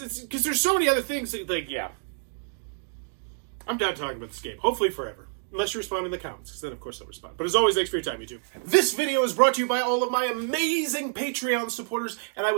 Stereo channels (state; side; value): silent; left; 59 dB below the other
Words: there's so many other things that, yeah. I'm done talking about this game. Hopefully forever. Unless you respond in the comments, because then of course I'll respond. But as always, thanks for your time, YouTube. This video is brought to you by all of my amazing Patreon supporters, and I